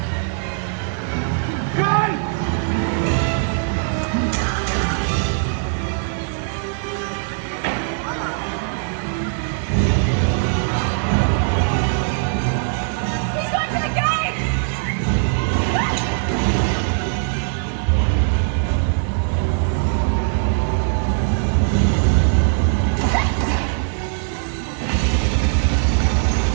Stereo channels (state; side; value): silent; left; 65 dB below the other